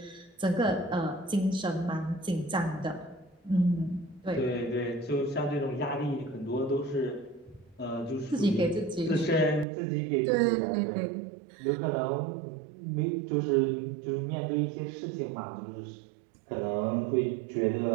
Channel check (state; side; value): drops out; left; at 9.7 s